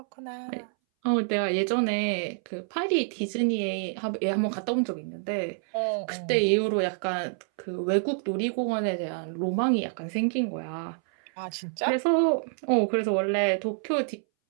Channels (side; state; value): left; silent; 60 dB below the other